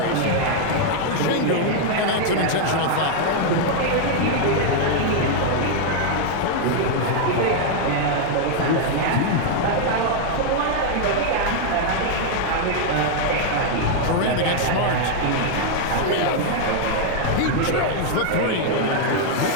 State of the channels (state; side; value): different; both; correlation 0.00